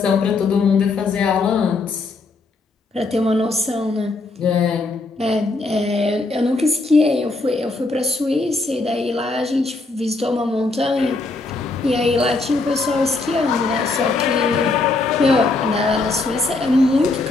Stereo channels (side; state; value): right; quieter; 3.5 dB